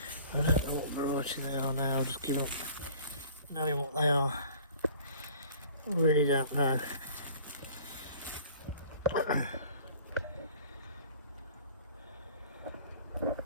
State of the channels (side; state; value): both; inverted; correlation -0.49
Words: don't know what variety they are now. I'm just giving up knowing what they are. I really don't know.